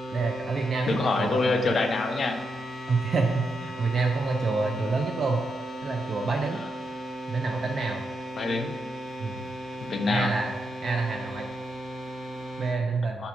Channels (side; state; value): both; normal; correlation 0.83